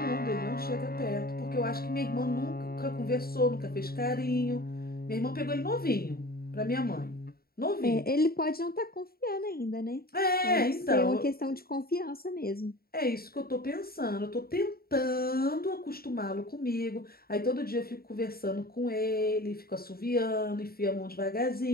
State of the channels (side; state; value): right; late; 0.44 ms